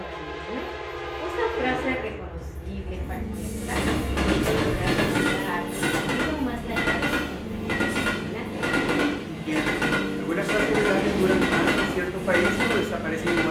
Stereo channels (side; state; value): both; identical; correlation 1.00